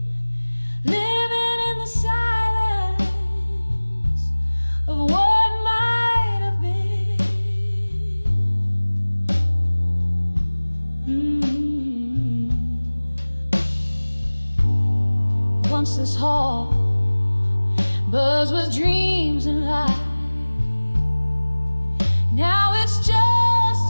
living in the silence of what might have been. Once this hall buzzed with dreams and lies. Now it's just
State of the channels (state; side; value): inverted; both; correlation -1.00